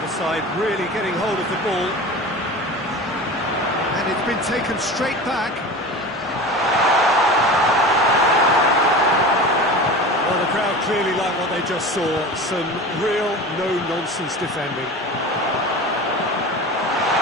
side really getting hold of the ball. And it's been taken straight back. Well, the crowd clearly like what they just saw. Some real no-nonsense defending.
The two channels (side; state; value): both; normal; correlation 0.33